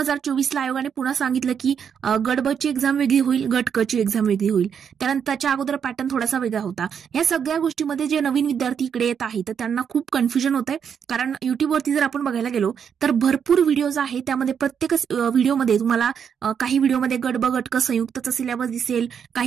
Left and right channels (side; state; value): left; quieter; 7.5 dB